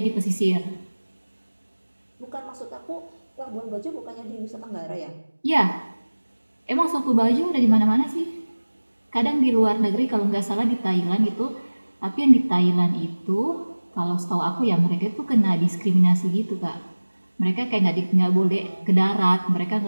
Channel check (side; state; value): both; inverted; correlation -1.00